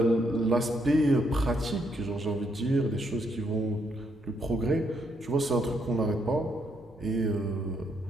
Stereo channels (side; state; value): both; normal; correlation 0.75